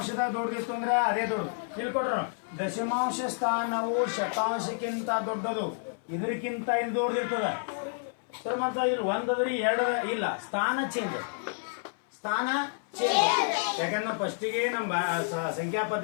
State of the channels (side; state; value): right; silent; 58 dB below the other